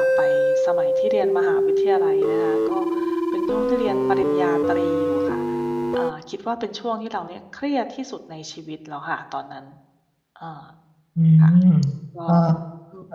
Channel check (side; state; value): both; identical; correlation 1.00